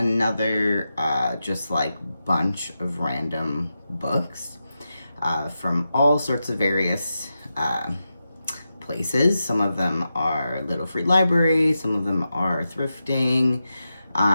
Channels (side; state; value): both; inverted; correlation -0.90